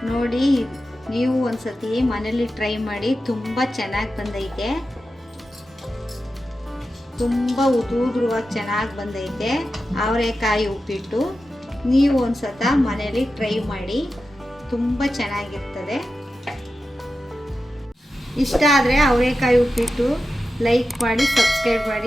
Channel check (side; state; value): both; normal; correlation 0.92